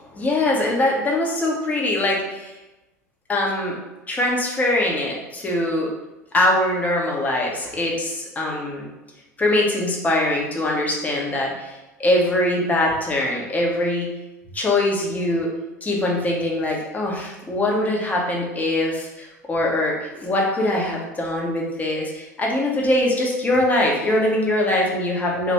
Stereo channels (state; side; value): normal; both; correlation 0.48